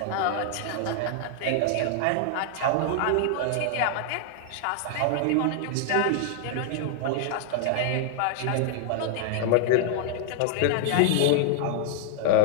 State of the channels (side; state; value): both; different; correlation -0.01